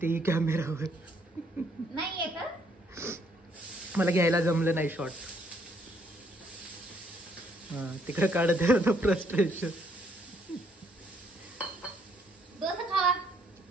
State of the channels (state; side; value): normal; both; correlation 0.69